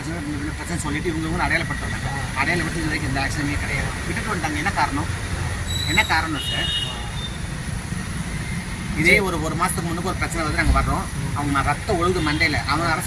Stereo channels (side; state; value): both; identical; correlation 1.00